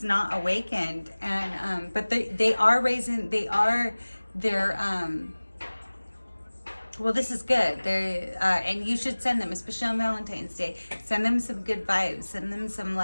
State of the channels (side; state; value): both; inverted; correlation -1.00